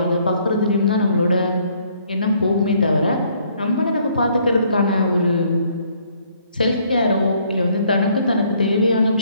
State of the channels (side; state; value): both; inverted; correlation -0.65